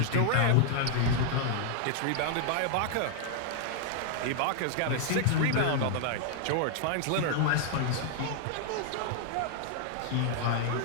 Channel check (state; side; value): different; both; correlation 0.00